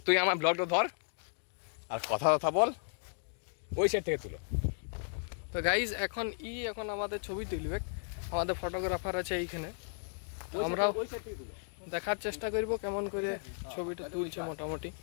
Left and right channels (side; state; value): right; silent; digital silence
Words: তুই আমার ব্লগটা ধর আর কথা বল, ওই সাইড থেকে তুলো। তো গাইজ এখন আমাদের ছবি তুলবে, আমাদের ফটোগ্রাফার আছে এইখানে, আমরাও দেখার চেষ্টা করব কেমন করে ছবিটা তুলছে। মোটামুটি